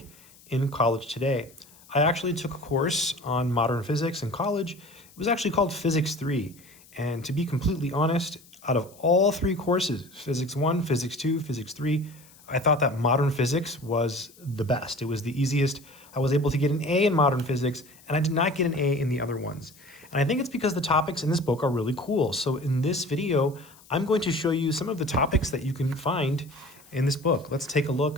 in college today. I actually took a course on modern physics in college. It was actually called Physics 3. And to be completely honest, out of all three courses, Physics 1, Physics 2, Physics 3, I thought that modern physics was the best. It was the easiest. I was able to get an A in modern physics, and I did not get an A in the other ones. And I think it's because the topics in this book are really cool. So in this video, I'm going to show you some of the topics that you can find in this book. Let's take a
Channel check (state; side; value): noise; left; hiss, 25 dB below the sound